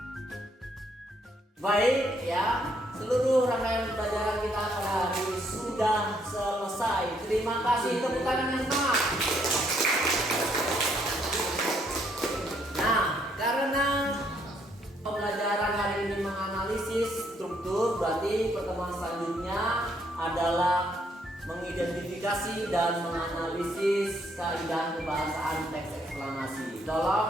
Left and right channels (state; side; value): normal; both; correlation 0.70